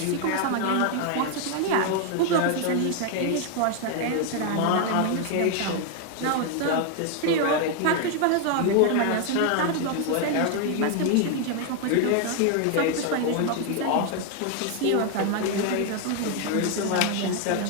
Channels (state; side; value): different; both; correlation 0.00